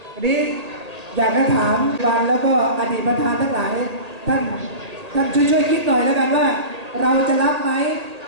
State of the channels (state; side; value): late; left; 1.8 ms